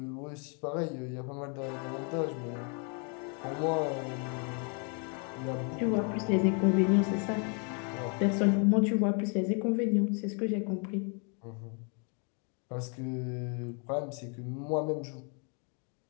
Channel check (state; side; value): quieter; right; 37.6 dB